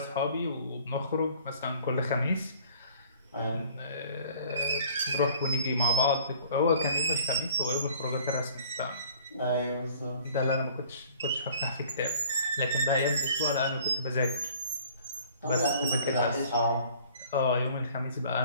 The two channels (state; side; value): inverted; both; correlation -0.53